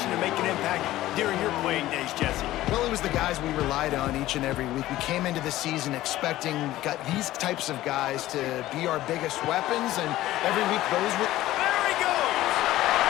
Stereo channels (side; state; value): right; quieter; 15.5 dB